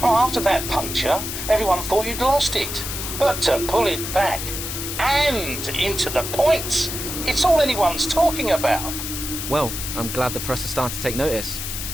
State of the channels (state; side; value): noise; left; hiss, 5 dB below the sound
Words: Oh, after that puncture, everyone thought you'd lost it. But to pull it back and into the points, it's all anyone's talking about. Well, I'm glad the press has started to take notice.